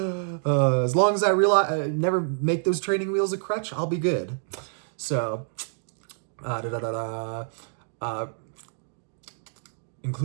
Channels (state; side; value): silent; left; digital silence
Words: long as I never make those training wheels a crutch, I'll be good. So,